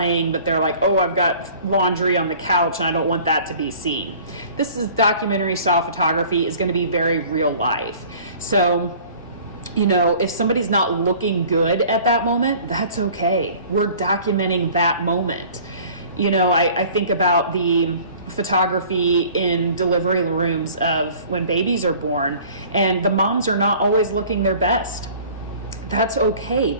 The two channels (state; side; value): inverted; both; correlation -0.48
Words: but they're like, oh, I've got laundry on the couch and I don't want that to be seen. This is documentary style photography is going to be very real life. So, you know, if somebody's not looking good at that moment, that's okay. We're documenting that moment. You know, I think about the photography in delivery rooms of when babies are born, and the moms are not always looking their best. That's okay.